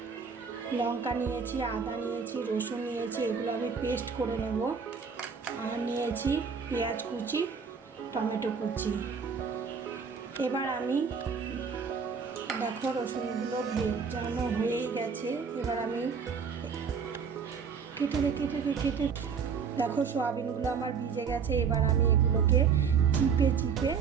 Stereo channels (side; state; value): left; quieter; 6.1 dB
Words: লঙ্কা, নিয়েছি আদা, নিয়েছি রসুন, নিয়েছি এগুলো আমি পেস্ট করে নেব। আর নিয়েছি পেঁয়াজ কুচি, টমেটো কুচি। এবার আমি দেখো রসুনগুলো ভেজানো হয়েই গেছে। এবার আমি কেটে দেখো সোয়াবিনগুলো আমার ভিজে গেছে। এবার আমি এগুলোকে চিপে